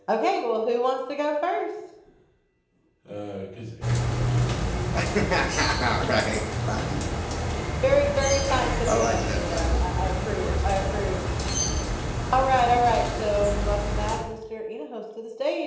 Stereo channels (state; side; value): identical; both; correlation 1.00